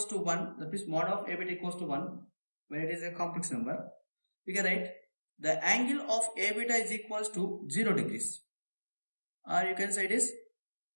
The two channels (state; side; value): inverted; both; correlation -1.00